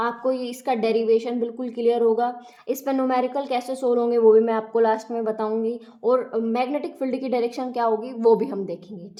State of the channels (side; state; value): both; identical; correlation 1.00